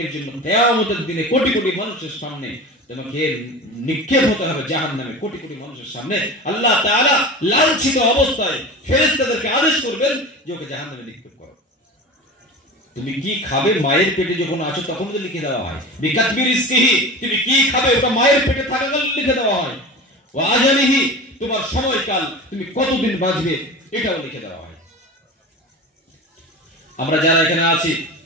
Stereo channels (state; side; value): normal; both; correlation 0.31